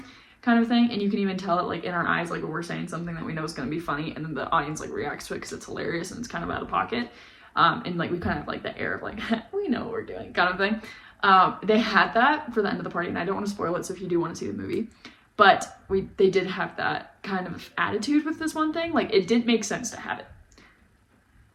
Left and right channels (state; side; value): identical; both; correlation 1.00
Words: kind of thing. And you can even tell it like in our eyes, like when we're saying something that we know is going to be funny, and then the audience like reacts to it because it's hilarious and it's kind of out of pocket. And like we kind of have like the air of like, we know what we're doing kind of thing. They had that for the end of the party, and I don't want to spoil it, so if you do want to see the movie, but they did have that kind of attitude with this one thing. Like it didn't make sense to have it